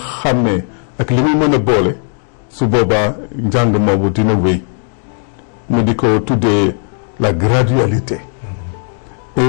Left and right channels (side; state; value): right; silent; 62 dB below the other